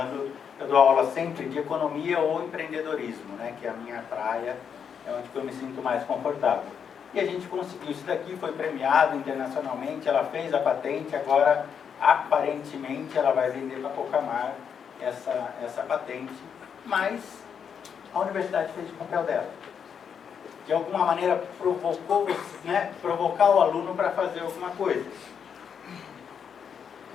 eu dou aula sempre de economia ou empreendedorismo, né, que é a minha praia, é onde eu me sinto mais confortável. E a gente conseguiu isso daqui, foi premiado internacionalmente, ela fez a patente, agora aparentemente ela vai vender para Cocamar essa patente, mas a universidade fez o papel dela. De alguma maneira provocou, né, provocar o aluno para fazer alguma coisa.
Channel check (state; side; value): quieter; right; 7.3 dB